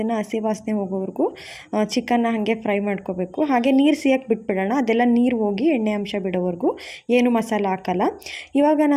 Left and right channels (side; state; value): both; identical; correlation 1.00